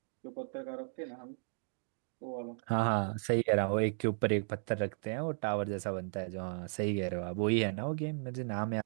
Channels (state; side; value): silent; left; 54 dB below the other